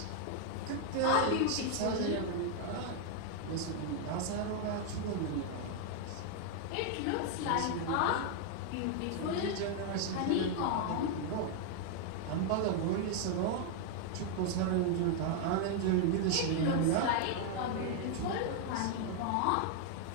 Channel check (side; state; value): both; different; correlation 0.00